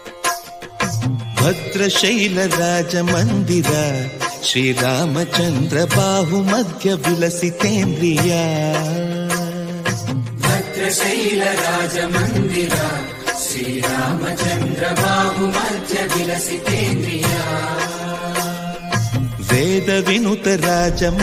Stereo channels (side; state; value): both; identical; correlation 1.00